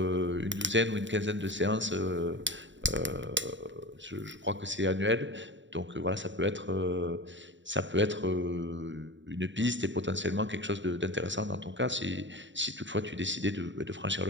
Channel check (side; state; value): left; late; 0.54 ms